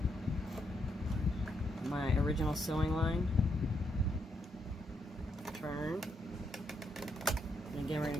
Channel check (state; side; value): normal; both; correlation 0.78